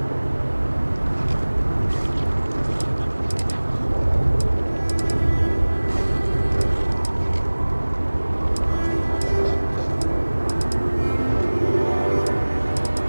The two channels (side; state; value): both; inverted; correlation -1.00